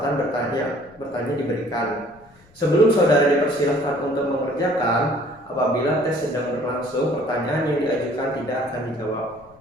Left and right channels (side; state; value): left; noise; rumble, 28 dB below the sound